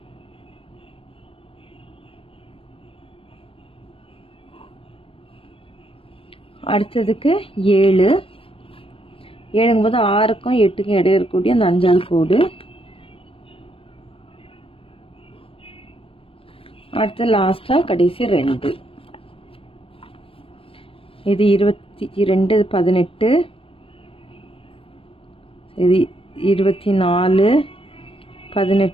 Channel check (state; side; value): late; right; 0.26 ms